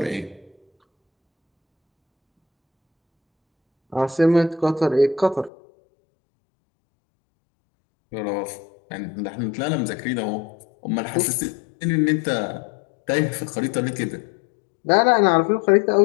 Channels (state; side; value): drops out; right; at 5.5 s